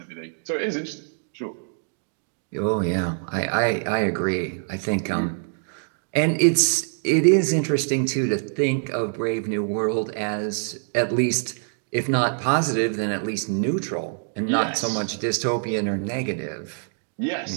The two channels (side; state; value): left; silent; 62 dB below the other